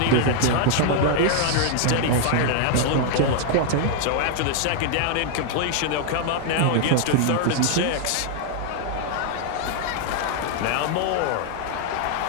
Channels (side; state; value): both; different; correlation 0.00